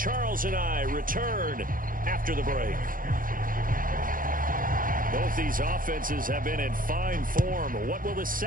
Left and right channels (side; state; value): left; late; 0.40 ms